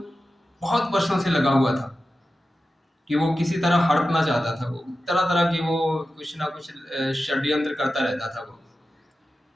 बहुत वर्षों से लगा हुआ था कि वो किसी तरह हड़पना चाहता था। वो तरह तरह की वो कुछ ना कुछ षड्यंत्र करता रहता था। वो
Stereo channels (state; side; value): normal; both; correlation 0.93